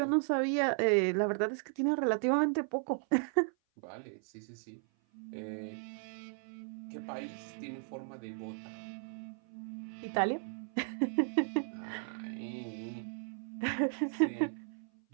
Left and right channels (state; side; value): silent; left; 54 dB below the other